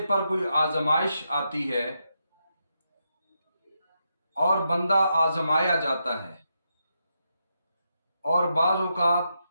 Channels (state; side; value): inverted; both; correlation -0.83